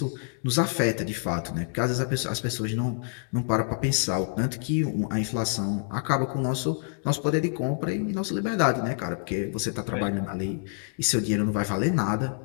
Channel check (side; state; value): right; silent; 60 dB below the other